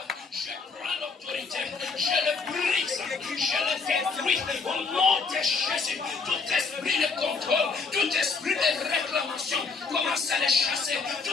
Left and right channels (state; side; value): quieter; right; 4.6 dB